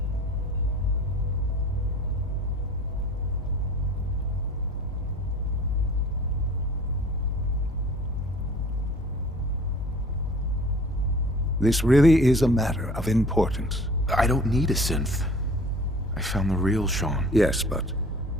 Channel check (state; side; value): normal; both; correlation 0.47